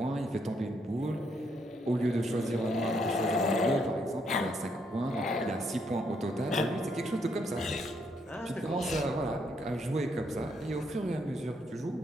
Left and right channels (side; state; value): both; normal; correlation 0.74